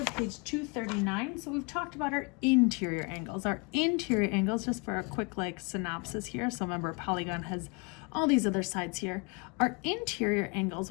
page 239. So we've talked about our interior angles. Our interior angles, just for a quick like synopsis here. So remember, a polygon has all these other sides here. Our interior angles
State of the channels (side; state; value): right; quieter; 31.7 dB